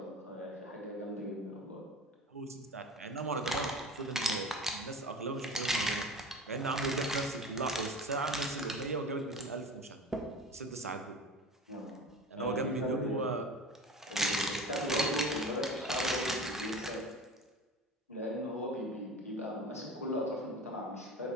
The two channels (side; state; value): both; normal; correlation 0.35